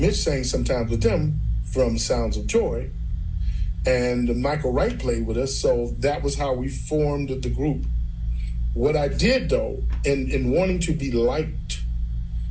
Mitch sang sometimes with them, from Sounds of Joy, and Michael Wright played with us, so that was how we formed the group. What I did, though, in wanting to be liked,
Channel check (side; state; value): both; identical; correlation 1.00